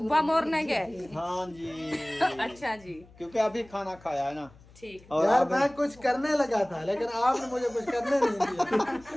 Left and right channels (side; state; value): left; noise; hum, 25 dB below the sound